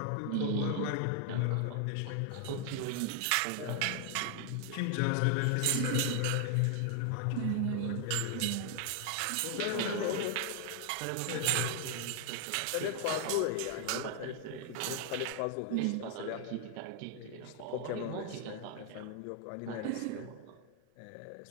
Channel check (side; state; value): both; different; correlation 0.00